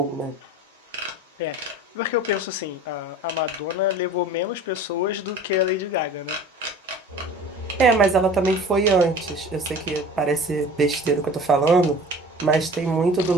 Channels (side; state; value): both; normal; correlation 0.42